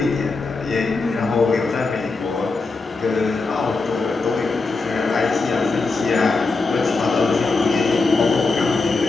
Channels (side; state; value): right; quieter; 3.9 dB